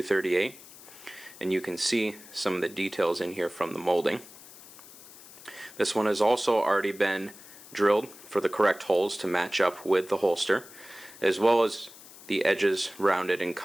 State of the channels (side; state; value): left; noise; hiss, 19 dB below the sound